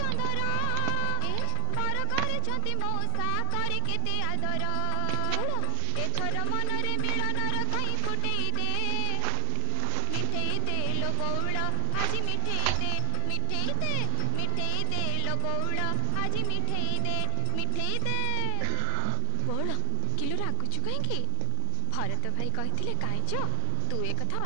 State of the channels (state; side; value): different; both; correlation 0.00